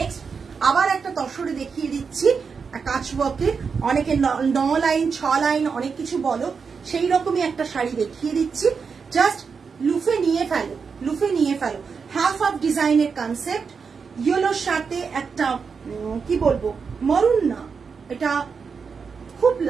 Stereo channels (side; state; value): left; quieter; 5.6 dB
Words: আবার একটা তসরে দেখিয়ে দিচ্ছি কাচওয়ার্কের, অনেকে 9 লাইন 6 লাইন অনেক কিছু বলো, সেই রকমই একটা শাড়ি দেখিয়ে দিচ্ছি। জাস্ট লুফে নিয়ে ফেলো। হাফ অফ ডিজাইনের কনসেপ্ট, ইয়েলোর সাথে একটা কি বলবো, মরুন না, এটা খুব